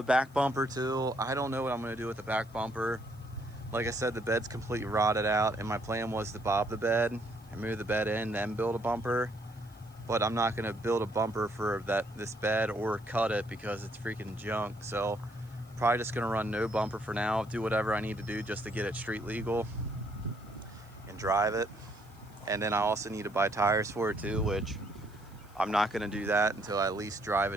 back bumper too. I don't know what I'm gonna do with the back bumper. like I said, the bed's completely rotted out, and my plan was to bob the bed and move the bed in, then build a bumper. But I'm not gonna build a bumper for this bed or cut it because it's freaking junk. So probably just gonna run no bumper for now, do whatever I need to do just to get it street legal and drive it. And then I also need to buy tires for it too, which I'm not gonna do that until I at least drive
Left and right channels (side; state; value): right; noise; hiss, 30 dB below the sound